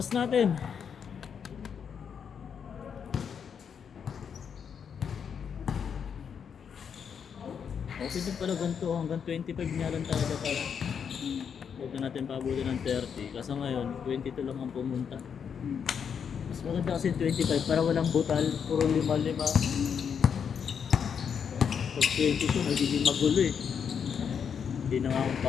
natin. Okay din pala ganito. Hanggang 25 niya lang talaga pala. Huwag na natin pabutin ng 30. Kasi ngayon, 22 lang ang pumunta. Mas maganda kasi 25 para walang butal. Puro 5-5. Pag 22, magiging magulo eh. Hindi na nga akong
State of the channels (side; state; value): right; quieter; 7.2 dB